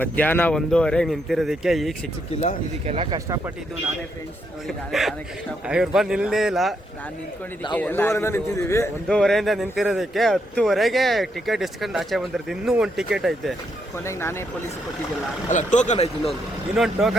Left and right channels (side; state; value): both; normal; correlation 0.77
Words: 1:15 ನಿಂತಿರೋದಕ್ಕೆ ಈಗ ಸಿಕ್ಕಿಲ್ಲ. ಇದಕ್ಕೆಲ್ಲ ಕಷ್ಟಪಟ್ಟಿದ್ದು ನಾನೇ ಫ್ರೆಂಡ್ಸ್. ನೋಡಿ ನಾನೇ ಕಷ್ಟಪಟ್ಟು ಇವ್ರು ಬಂದು ನಿಲ್ಲೇ ಇಲ್ಲ. ನಾನು ನಿಂತ್ಕೊಂಡಿದ್ದೀವಿ. 1:15 ನಿಂತಿದ್ದೀವಿ. 1:15 ನಿಂತಿರೋದಕ್ಕೆ 10:00ಗೆ ಟಿಕೆಟ್ ಇಸ್ಕೊಂಡು ಆಚೆ ಬಂದಿರ್ತೀವಿ. ಇನ್ನೂ ಒಂದು ಟಿಕೆಟ್ ಐತೆ. ಕೊನೆಗೆ ನಾನೇ ಪೊಲೀಸ್ ಕೊಟ್ಟಿದ್ದಿಲ್ಲ. ಅಲ್ಲ, ಟೋಕನ್ ಐತೆ. ಇನ್ನೊಂದು